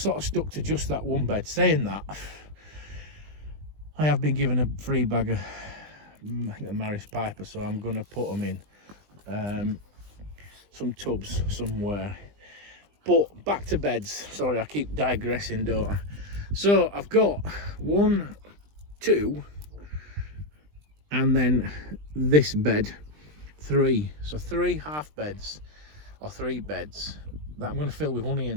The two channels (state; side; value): late; left; 20 ms